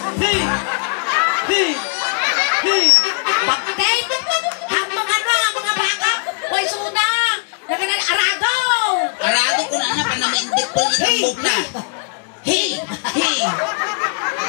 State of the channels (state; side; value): quieter; right; 39.6 dB